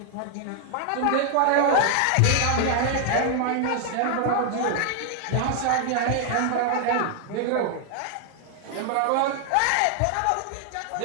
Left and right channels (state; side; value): different; both; correlation 0.00